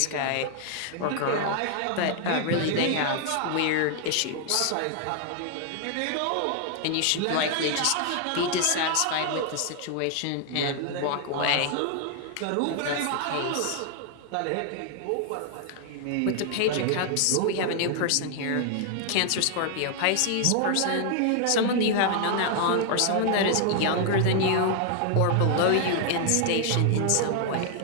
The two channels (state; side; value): different; both; correlation 0.00